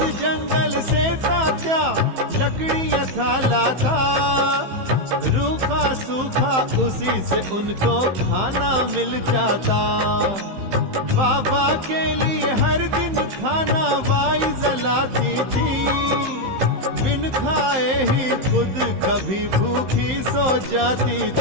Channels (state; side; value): late; left; 15 ms